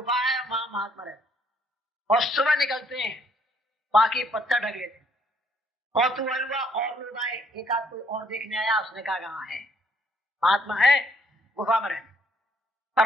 है वहां महात्मा रहते, और सुबह निकलते हैं, बाकी पत्थर ढक लेते। और तू हुआ और लोग आए, एक आध कोई और देखने आया, उसने कहा कहाँ है महात्मा, है गुफा में रहते।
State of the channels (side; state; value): both; normal; correlation 0.67